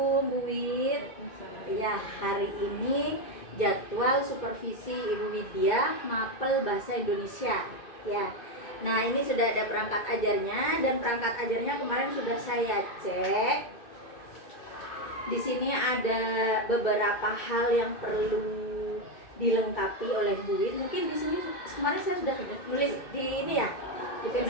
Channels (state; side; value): late; right; 2.3 ms